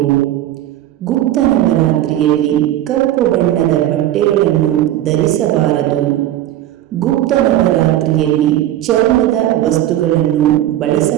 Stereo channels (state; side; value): quieter; left; 13.1 dB